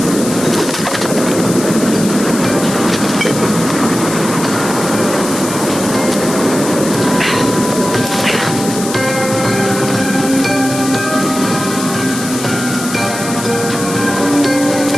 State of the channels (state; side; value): noise; left; hiss, 8 dB below the sound